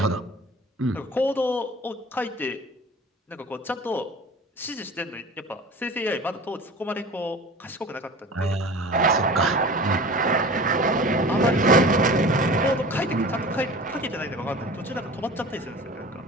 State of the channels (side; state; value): both; normal; correlation 0.39